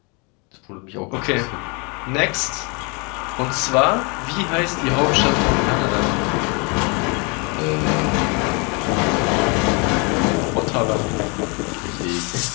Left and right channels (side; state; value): right; quieter; 31.6 dB